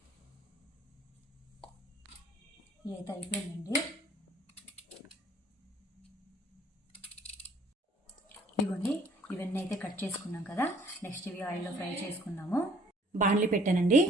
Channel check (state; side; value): normal; both; correlation 0.58